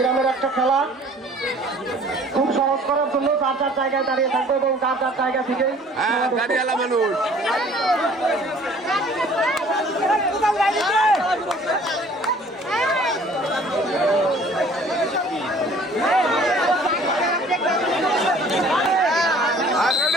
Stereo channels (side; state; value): both; normal; correlation 0.53